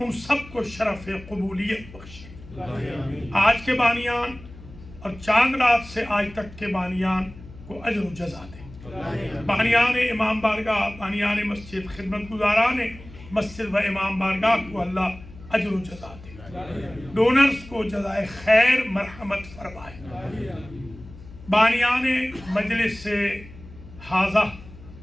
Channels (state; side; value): noise; left; hum, 18 dB below the sound